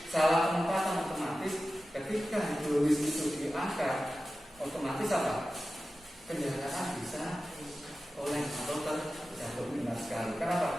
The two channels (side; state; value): both; normal; correlation 0.94